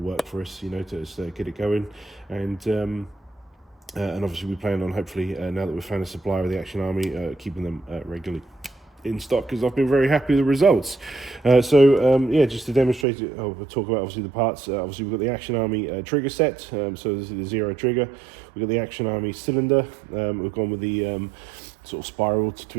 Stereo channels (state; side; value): drops out; left; at 13.1 s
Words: for us, you know, to just, get it going. And obviously we plan on, hopefully, now that we've found a supplier of the Action Army, keeping them regularly in stock, because I've been very happy with the results. Yeah, just to demonstrate it, we'll talk about obviously the parts. Obviously we've got the Action Army trigger set, so this is the zero trigger. We've got the Action Army cylinder. We've gone with the sort of spiral to